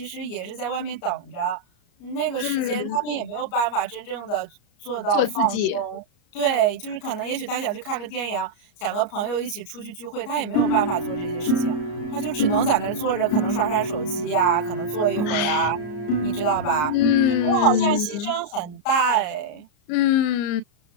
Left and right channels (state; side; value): late; right; 34 ms